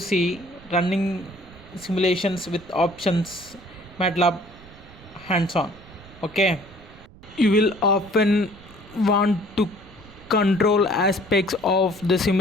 running simulations with options MATLAB hands on. Okay, you will often want to control aspects of the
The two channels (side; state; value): right; noise; rumble, 22 dB below the sound